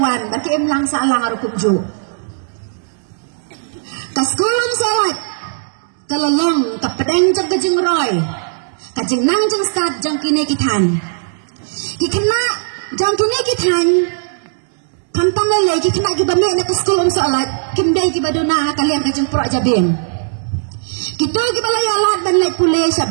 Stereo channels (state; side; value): silent; left; digital silence